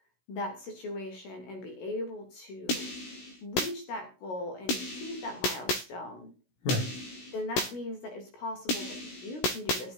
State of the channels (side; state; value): right; late; 16 ms